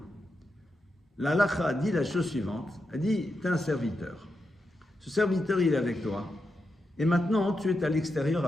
La halakha dit la chose suivante, elle dit, tu es un serviteur. Ce serviteur, il est avec toi, et maintenant, tu es à l'extérieur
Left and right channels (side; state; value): both; normal; correlation 0.86